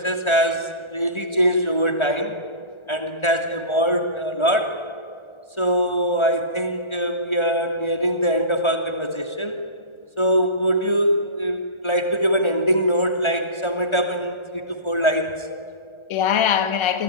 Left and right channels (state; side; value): late; right; 1.4 ms